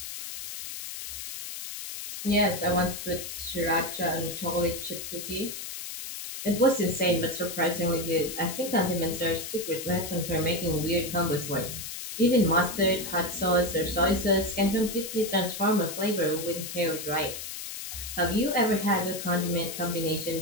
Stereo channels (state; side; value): noise; left; hiss, 8 dB below the sound